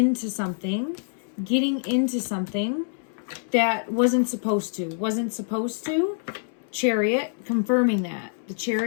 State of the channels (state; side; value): silent; right; 61 dB below the other